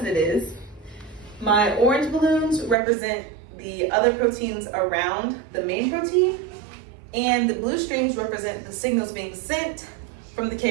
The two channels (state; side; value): drops out; left; at 2.8 s